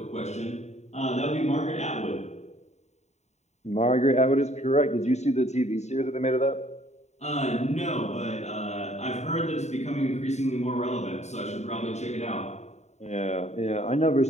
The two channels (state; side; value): late; right; 0.32 ms